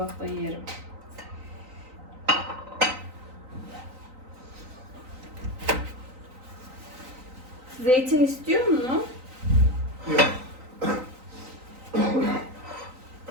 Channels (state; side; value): late; left; 3.9 ms